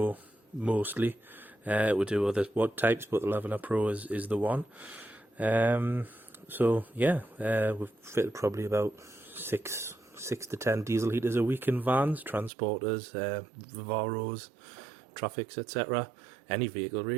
mostly. We do other types, but the Lavaner Pro is the one. So yeah, we've fitted probably about 6 to 10 diesel heaters a week in vans, transporters, Vivaros, traffics, etc. Any vehicle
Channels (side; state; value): left; drops out; at 12.5 s